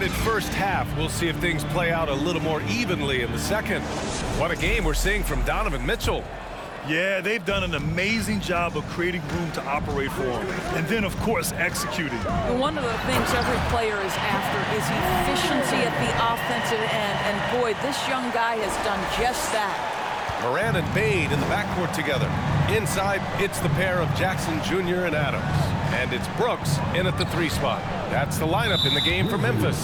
first half, we'll see if things play out a little more evenly in the second. What a game we're seeing from Donovan Mitchell. Yeah, they've done an amazing job of creating room to operate for him. And then, of course, executing. And one of the things every player is after is efficiency at the offensive end. And boy, this young guy has done just that. Moran and Bane in the backcourt together. Inside, it's the pair of Jackson Jr. and Adams. And it's Brooks in at the 3 spot. That's the lineup in the game for Memphis.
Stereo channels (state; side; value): identical; both; correlation 1.00